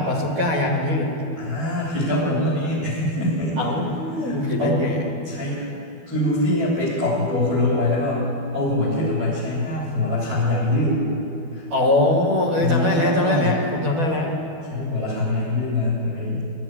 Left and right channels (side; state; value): left; late; 12 ms